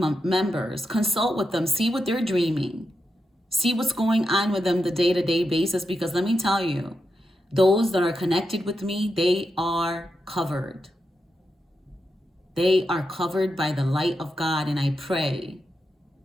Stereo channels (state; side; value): normal; both; correlation 0.86